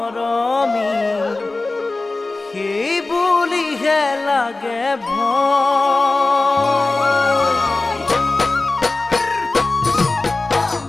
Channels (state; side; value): quieter; right; 3.3 dB